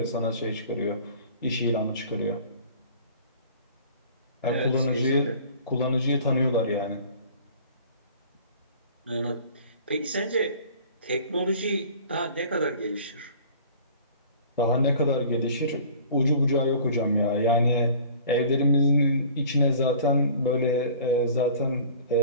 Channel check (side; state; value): both; inverted; correlation -0.47